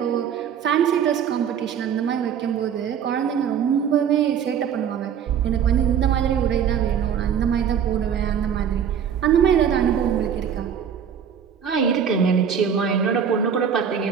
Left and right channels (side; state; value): left; quieter; 8.0 dB